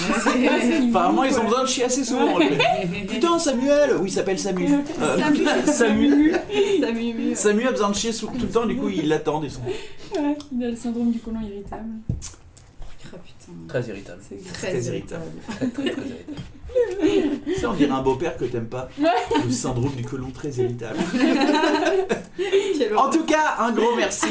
ils ont besoin de chier assez souvent. Putain, Samuel. Oui, il s'appelle Samu. Samu. Samu a besoin de chier tout le temps. Du coup, ils l'attendent. Ils sont. Ouais, il a le syndrome du côlon irritable. Ah putain. Très irritable. C'est Très Très irritable. Très, très irritable. Ça, on dirait un beau-père que t'aimes pas. Le syndrome du côlon très irritable. Quelle En tout cas, un gros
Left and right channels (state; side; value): identical; both; correlation 1.00